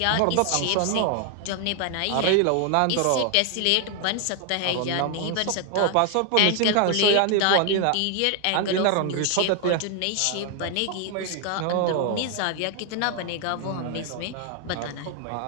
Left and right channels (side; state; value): both; different; correlation 0.00